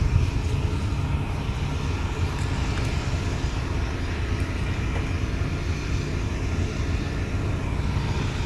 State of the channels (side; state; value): both; identical; correlation 1.00